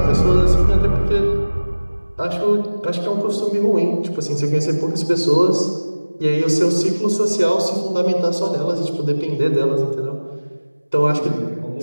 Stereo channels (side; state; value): both; inverted; correlation -1.00